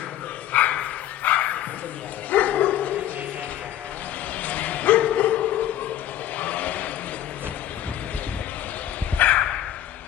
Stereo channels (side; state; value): right; quieter; 12.1 dB